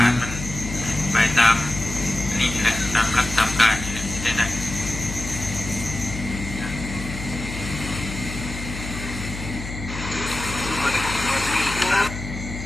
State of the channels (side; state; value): left; noise; hum, 8 dB below the sound